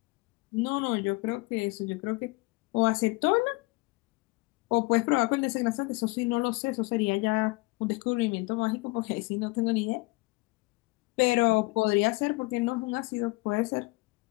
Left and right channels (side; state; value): right; quieter; 25.0 dB